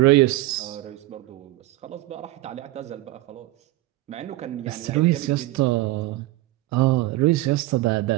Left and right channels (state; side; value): quieter; left; 18.0 dB